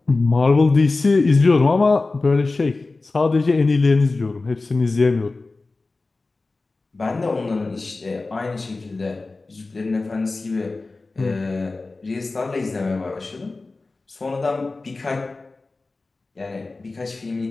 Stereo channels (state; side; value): quieter; right; 3.5 dB